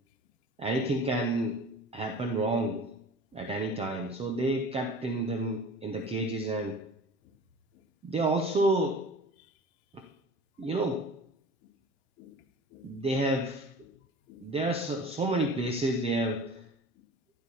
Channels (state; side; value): normal; both; correlation 0.41